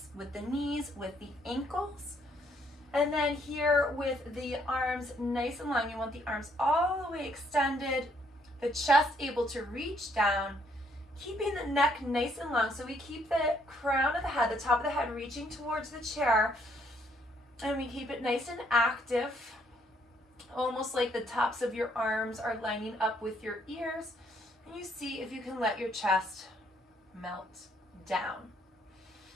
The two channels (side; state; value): both; normal; correlation 0.68